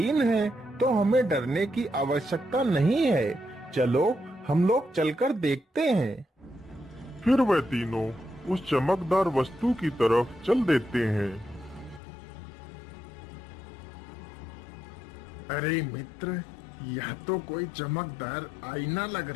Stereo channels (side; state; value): right; drops out; at 12.0 s